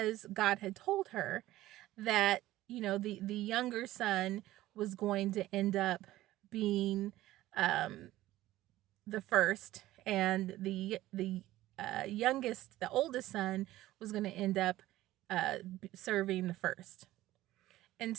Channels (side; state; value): left; quieter; 15.7 dB